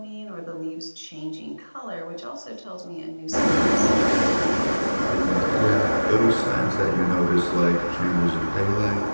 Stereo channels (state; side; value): inverted; both; correlation -1.00